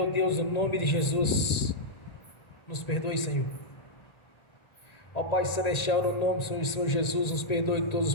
Deus, no nome de Jesus, nos perdoe, Senhor. Ó Pai Celestial, no nome do Senhor Jesus, nos perdoe de todos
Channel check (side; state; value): right; late; 1.9 ms